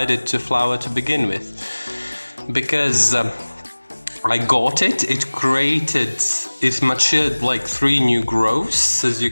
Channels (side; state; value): both; inverted; correlation -1.00